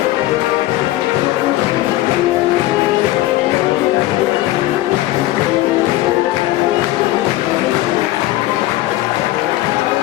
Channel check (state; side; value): quieter; right; 16.4 dB